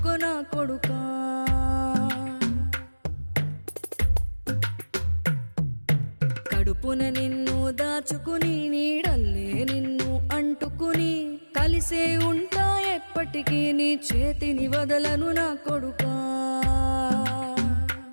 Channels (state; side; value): inverted; both; correlation -1.00